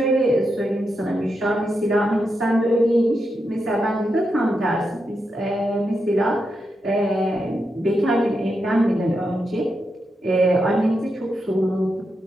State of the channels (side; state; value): both; normal; correlation 0.85